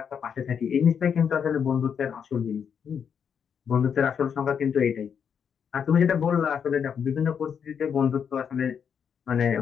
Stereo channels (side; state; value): right; quieter; 7.3 dB